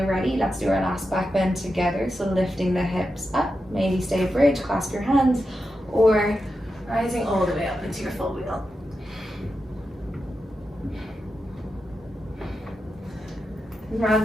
ready, let's do our last back bend together. So lifting the hips up, maybe stay bridge, clasp your hands, or rising all the way up into your full wheel.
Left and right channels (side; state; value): both; normal; correlation 0.89